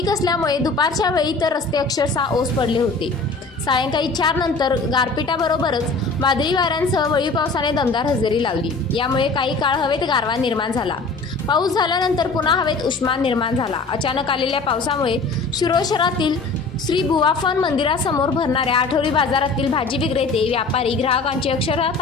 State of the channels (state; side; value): quieter; right; 3.9 dB